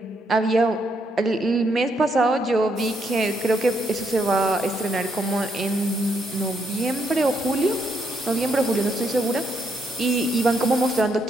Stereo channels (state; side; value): normal; both; correlation 0.76